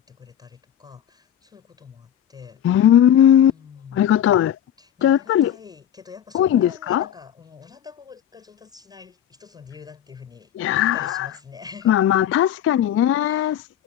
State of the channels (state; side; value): quieter; right; 10.4 dB